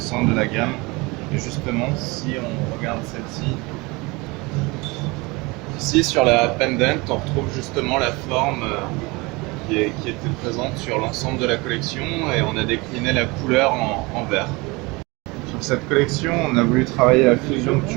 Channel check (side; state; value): left; quieter; 25.0 dB